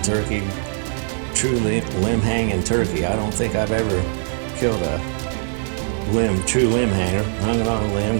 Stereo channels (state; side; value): silent; left; 60 dB below the other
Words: turkey, true limb hanging turkey. I don't think I've ever killed a true limb hanger. Hung it on a limb,